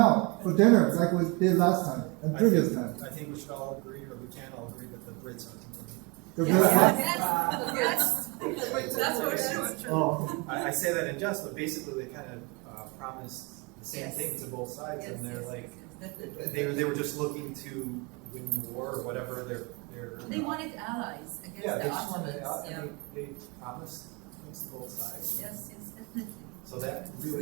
for dinner like we did last time and previous time. I think we should all agree, or we can all agree that the Brits are The That's for sure. Oh. I say that in jest, but basically they kind of promised the same thing to both sides, and they're like, they were just looking to win the war or whatever. They wanted allies against yeah, the they just wanted, Ottomans. they promised things to both sides. Yes, definitely. So that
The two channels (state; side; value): quieter; left; 29.1 dB